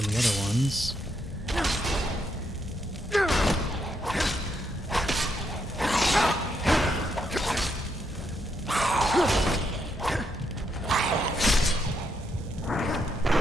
the other ones.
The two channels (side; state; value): both; normal; correlation 0.78